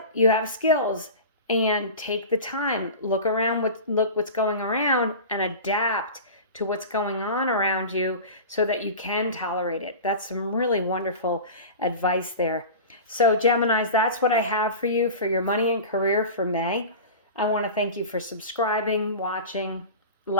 You have skills, and take the time. Look around, look what's going around and adapt to what's going on around you so that you can tolerate it. That's some really wonderful advice there. So Geminis, that's what I have for you for your money and career for May. I want to thank you for subscribing, watching,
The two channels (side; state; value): both; inverted; correlation -0.32